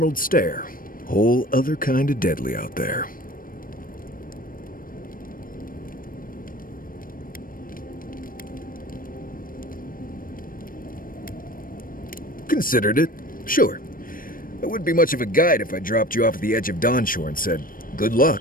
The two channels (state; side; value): late; right; 0.41 ms